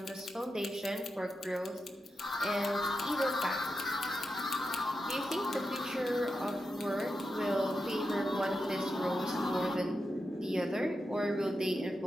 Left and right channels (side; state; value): both; normal; correlation 0.88